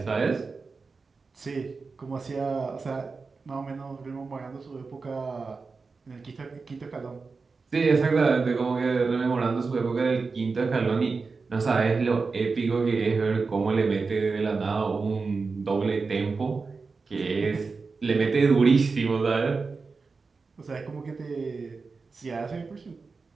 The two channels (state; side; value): quieter; left; 4.4 dB